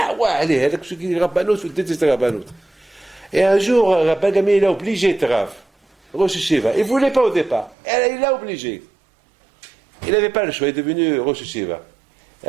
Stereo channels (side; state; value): left; drops out; at 7.8 s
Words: ouais, allez, avec ceux qui disent Rabbanout, il faut détester Rabbanout. Et un jour, Rabban Gamliel, il a obligé de Rav, Rosh Hashiva. Il ne voulait pas au départ. Il l'a obligé. Il n'avait pas le choix, il est devenu Rosh Hashiva.